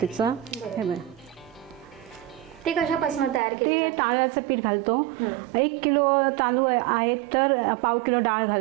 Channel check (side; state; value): left; drops out; at 3.4 s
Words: हे बघ, ते कशापासून तयार केले. ते तांदळाचं पीठ घालतो. 1 किलो तांदूळ आहेत तर पाव किलो डाळ